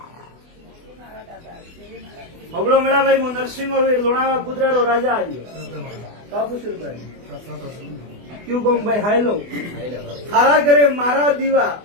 હબળો મેળાભાઈ હું નરસિંહ વીર લોણાવા કુદરારો રાજા આવ્યો કાપુસુરભાઈ ક્યુ કહું ભાઈ હાયલો હારા ઘરે મારા દીવા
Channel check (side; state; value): left; late; 24 ms